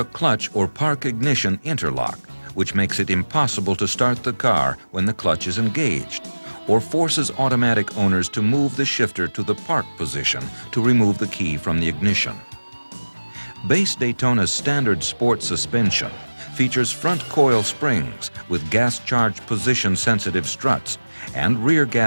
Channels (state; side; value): inverted; both; correlation -1.00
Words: clutch or park ignition interlock, which makes it impossible to start the car when the clutch is engaged, or forces automatic owners to move the shifter to the park position to remove the key from the ignition. Base Daytona's standard sport suspension features front coil springs with gas-charged position-sensitive struts and rear